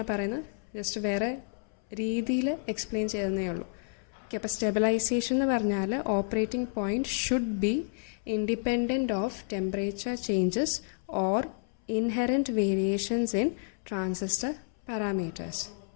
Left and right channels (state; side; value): silent; right; 58 dB below the other